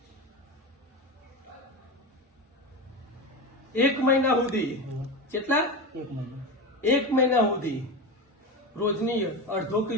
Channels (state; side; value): normal; both; correlation 0.21